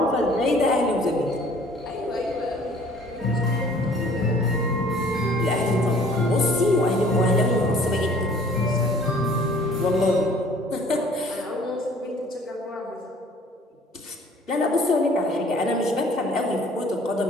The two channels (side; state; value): both; normal; correlation 0.54